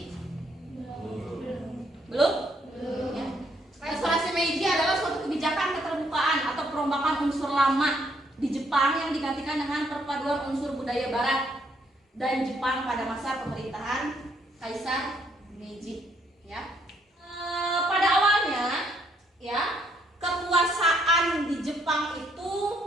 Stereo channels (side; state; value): both; normal; correlation 0.70